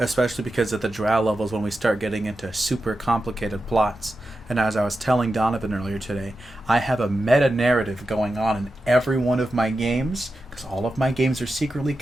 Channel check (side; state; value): both; normal; correlation 0.91